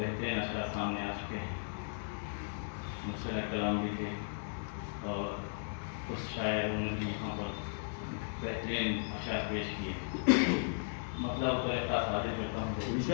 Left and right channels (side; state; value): right; silent; digital silence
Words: अशआर सामने आ चुके हैं। मुसरा कलाम भी थे और उस शायरों ने भी यहाँ पर बेहतरीन अशआर पेश किए। मतलब तो एक खास हाजिर करता हूँ